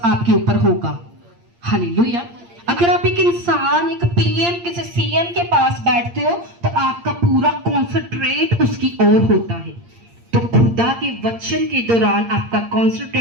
आपके ऊपर होगा। हालेलुया। अगर आप एक इंसान, एक पीएम, किसी सीएम के पास बैठते हो तो आपका पूरा कॉन्सेंट्रेट उसकी ओर होता है। तो खुदा के वचन के दौरान आपका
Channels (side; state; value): left; late; 8.7 ms